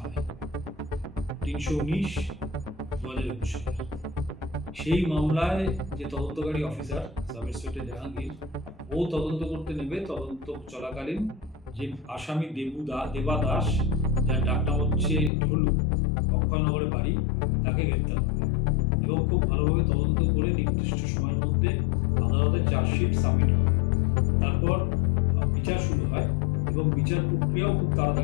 হয় 319/2021। সেই মামলায় যে তদন্তকারী অফিসার সাব ইন্সপেক্টর জাহাঙ্গীর ও তদন্ত করতে নেবে, তদন্ত চলাকালীন যে আসামি দেবাদাস, যার ডাকনাম হচ্ছে ঢোলু, অক্ষয়নগরে বাড়ি, তাকে গ্রেপ্তার করে এবং খুব ভালোভাবে তদন্ত করে নির্দিষ্ট সময়ের মধ্যে আদালতে চার্জশিট সাবমিট করে। তারপর বিচার শুরু হয় এবং বিচার প্রক্রিয়াও খুব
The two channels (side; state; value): right; drops out; at 15.3 s